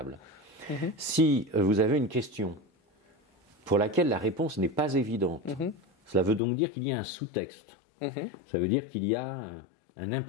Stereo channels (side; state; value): right; drops out; at 6.4 s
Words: Si vous avez une question pour laquelle la réponse n'est pas évidente, cela veut donc dire qu'il y a un sous-texte. Ça veut dire qu'il y a un